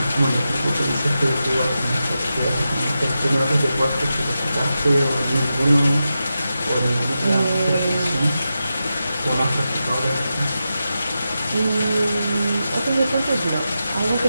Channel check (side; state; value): both; inverted; correlation -0.90